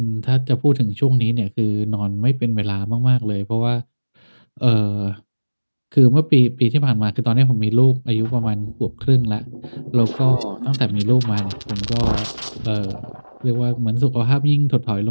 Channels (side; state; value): both; inverted; correlation -1.00